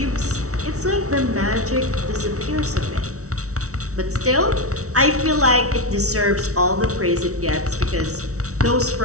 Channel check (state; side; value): late; left; 0.65 ms